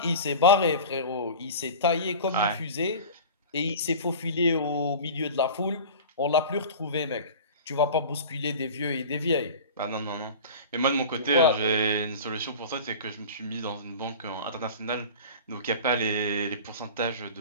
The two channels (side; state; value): both; inverted; correlation -0.36